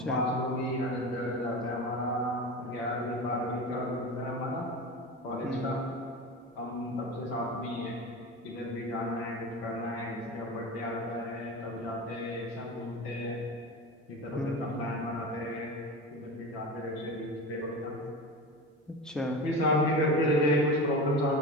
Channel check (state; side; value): normal; both; correlation 0.28